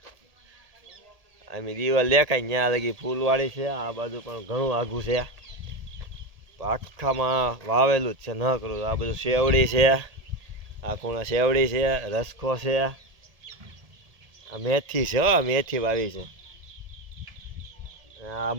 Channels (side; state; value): left; late; 1.7 ms